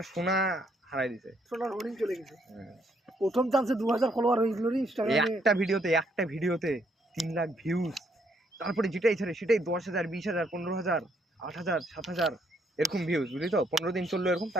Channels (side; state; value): both; normal; correlation 0.71